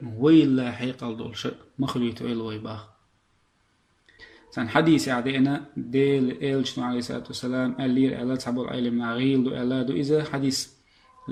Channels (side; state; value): both; identical; correlation 1.00